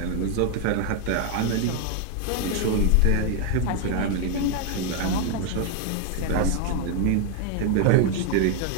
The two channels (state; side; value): different; both; correlation 0.01